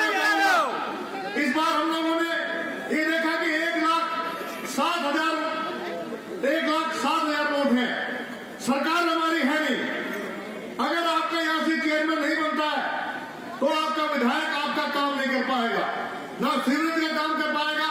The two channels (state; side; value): identical; both; correlation 1.00